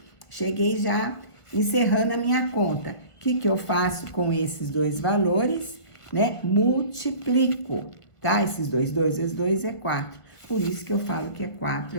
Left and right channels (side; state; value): right; late; 1.5 ms